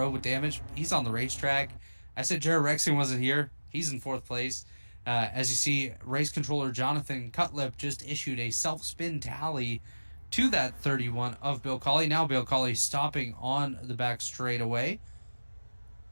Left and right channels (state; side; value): inverted; both; correlation -1.00